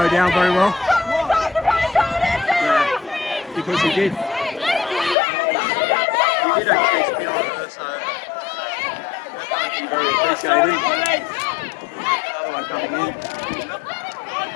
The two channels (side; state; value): right; drops out; at 5.2 s